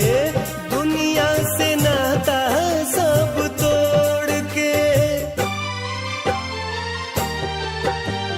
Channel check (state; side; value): identical; both; correlation 1.00